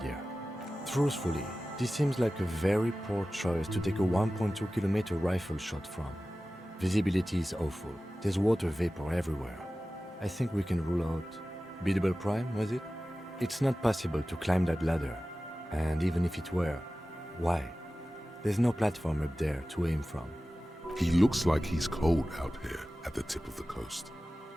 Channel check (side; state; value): both; normal; correlation 0.95